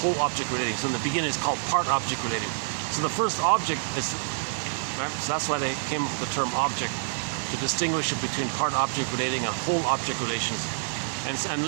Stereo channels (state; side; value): silent; left; digital silence